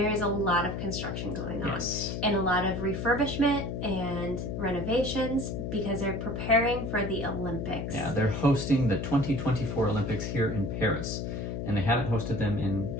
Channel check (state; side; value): noise; left; hum, 4 dB below the sound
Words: is a lot of construction going on. Yes. And a lot of refurbishment and renovations because they're preparing for the Olympics. Yeah, they're hosting the 2024 Olympics here in Paris, and they haven't hosted them in